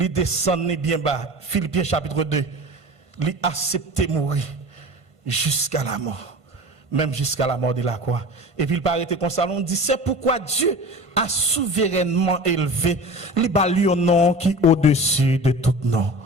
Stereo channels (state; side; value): late; left; 1.5 ms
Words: descend bien bas. Philippiens chapitre 2, il accepte mourir jusqu'à la mort, même jusqu'à la mort de la croix. Et puis il paraît comme ça, on dit c'est pourquoi Dieu a souverainement élevé le nom qui est au-dessus de tout nom.